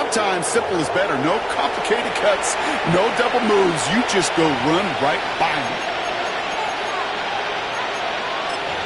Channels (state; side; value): identical; both; correlation 1.00